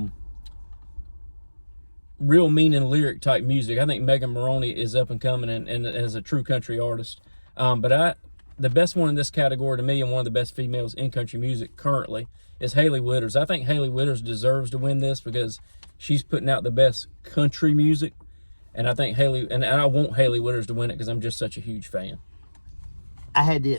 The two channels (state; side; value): inverted; both; correlation -1.00